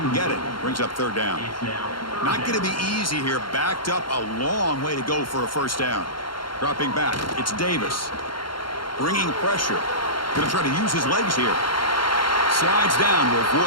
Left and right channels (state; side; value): late; right; 0.73 ms